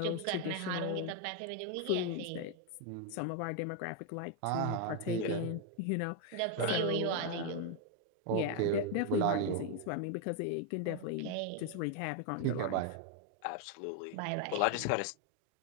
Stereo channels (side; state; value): both; different; correlation 0.01